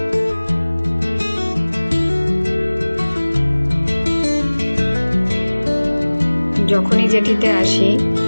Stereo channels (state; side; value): inverted; both; correlation -1.00